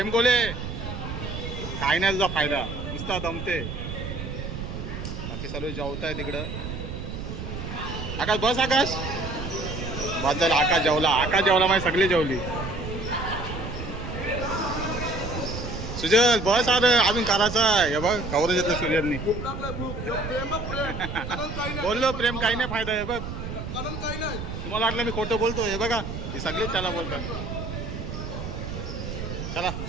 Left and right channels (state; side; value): noise; right; rumble, 6 dB below the sound